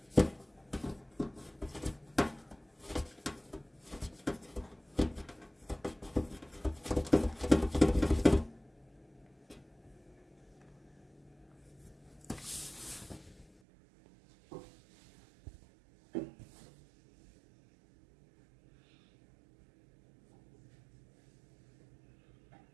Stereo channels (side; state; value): left; drops out; at 13.5 s